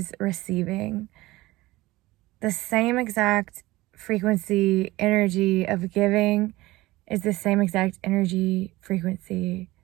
receiving. The same exact frequency, energy of giving is the same exact energy, frequency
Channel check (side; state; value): left; quieter; 19.0 dB